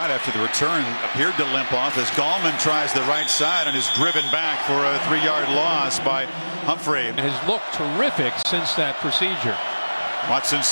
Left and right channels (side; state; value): both; inverted; correlation -1.00